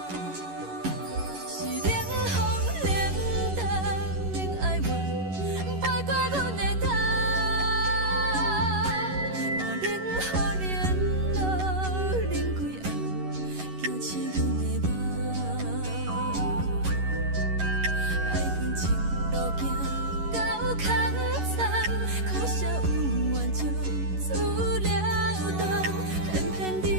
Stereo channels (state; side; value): late; left; 11 ms